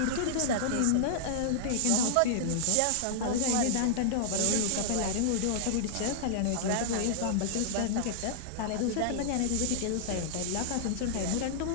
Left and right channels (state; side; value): different; both; correlation -0.01